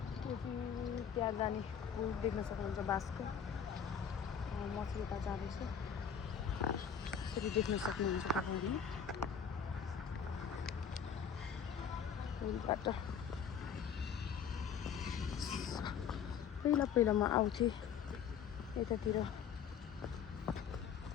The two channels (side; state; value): right; quieter; 7.4 dB